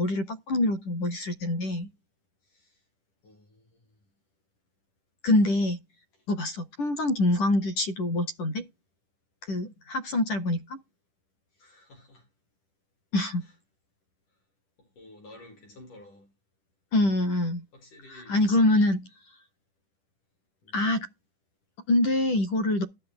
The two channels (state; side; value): late; right; 10 ms